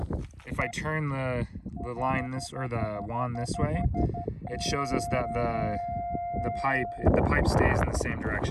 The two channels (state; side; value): identical; both; correlation 1.00